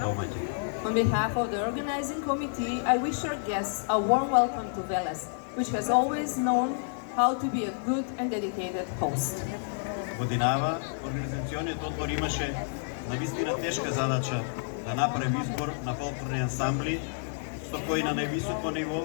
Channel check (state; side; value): silent; right; 58 dB below the other